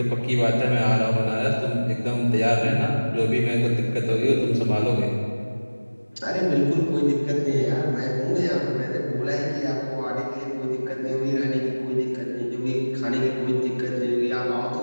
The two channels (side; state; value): both; inverted; correlation -1.00